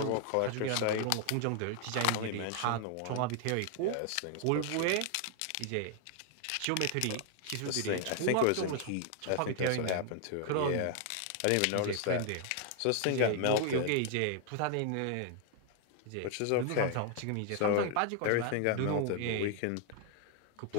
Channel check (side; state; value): both; different; correlation 0.00